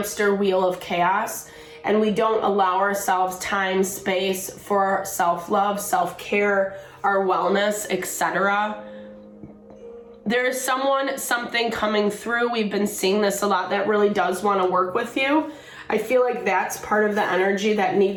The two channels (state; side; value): identical; both; correlation 1.00